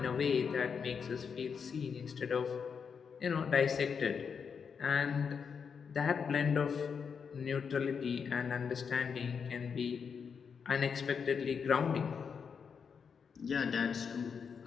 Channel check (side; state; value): right; quieter; 6.3 dB